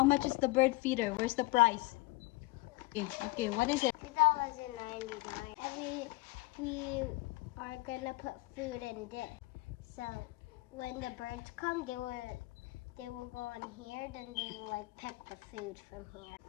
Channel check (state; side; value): quieter; right; 21.1 dB